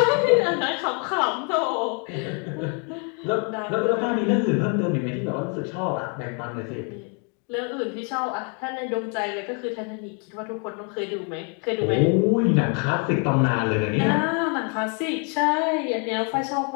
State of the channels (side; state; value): right; quieter; 37.9 dB